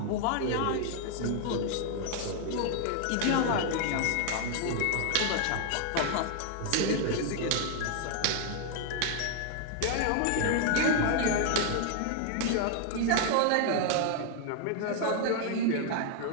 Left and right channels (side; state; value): both; different; correlation 0.00